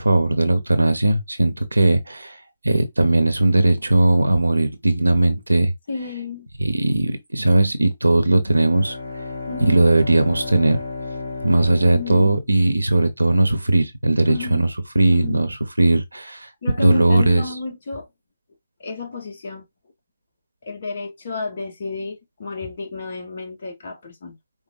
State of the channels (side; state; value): both; inverted; correlation -0.95